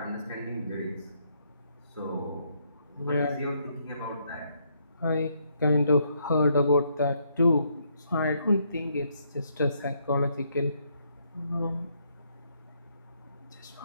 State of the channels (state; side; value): inverted; both; correlation -0.73